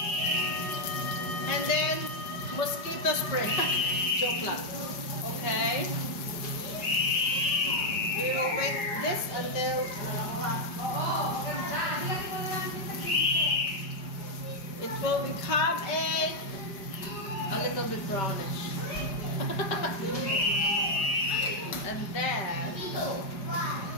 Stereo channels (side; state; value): right; late; 5.2 ms